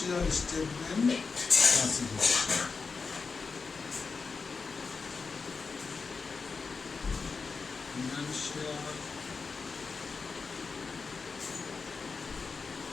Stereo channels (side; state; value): right; quieter; 4.7 dB